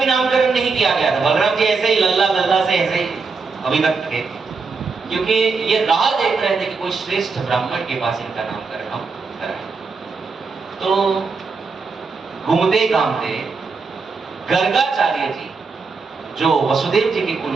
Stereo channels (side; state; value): left; quieter; 4.6 dB